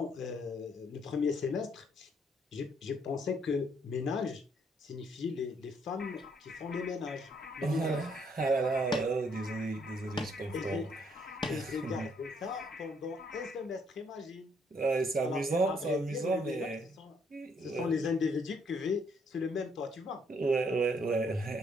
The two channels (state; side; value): normal; both; correlation 0.69